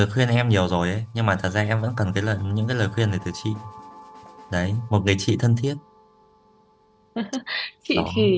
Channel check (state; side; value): identical; both; correlation 1.00